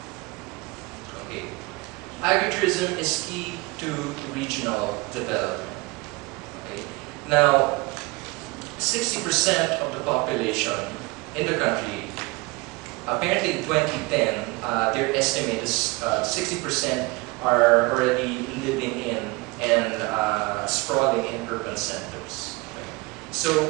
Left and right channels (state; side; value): quieter; left; 25.2 dB